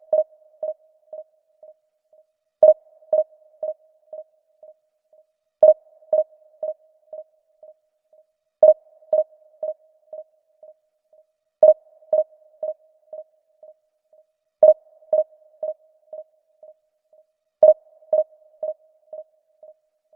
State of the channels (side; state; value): left; quieter; 3.1 dB